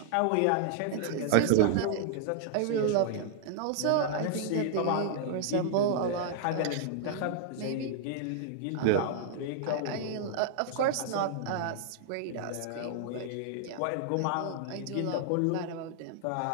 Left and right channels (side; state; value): both; different; correlation -0.01